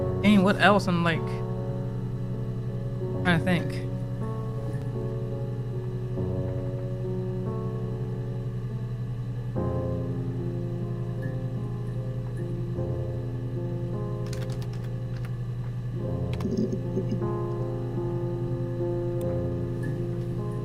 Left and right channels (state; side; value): identical; both; correlation 1.00